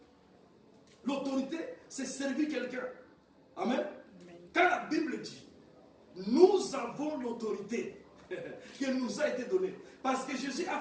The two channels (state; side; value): identical; both; correlation 1.00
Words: L'autorité, c'est servir quelqu'un. Amen. Quand la Bible dit, nous avons l'autorité qui nous a été donnée. Parce que Jésus a